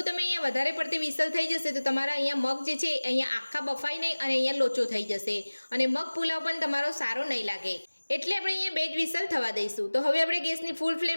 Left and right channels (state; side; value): inverted; both; correlation -1.00